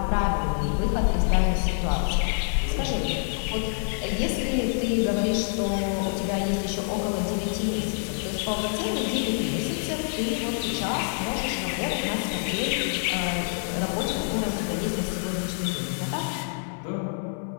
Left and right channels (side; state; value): right; silent; digital silence